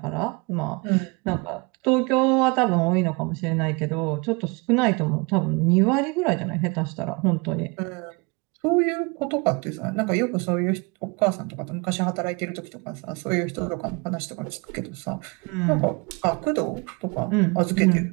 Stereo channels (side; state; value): left; quieter; 28.9 dB